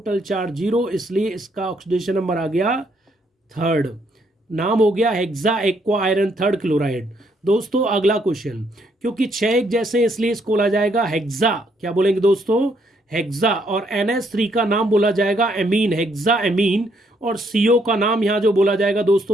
चार्ज 0, इसलिए इसका ऑक्सीडेशन नंबर आ गया थर्ड, नाम हो गया hexa aqua iron third chloride. दोस्तों अगला क्वेश्चन, क्योंकि 6 एक जैसे इसलिए इसको बोला जाएगा हेक्सा। क्या बोलेंगे दोस्तों? हेक्सा। और NH3 का नाम बोला जाएगा एमीन, हेक्सा एमीन। और CO का नाम यहाँ जो बोला जाएगा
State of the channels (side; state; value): both; normal; correlation 0.72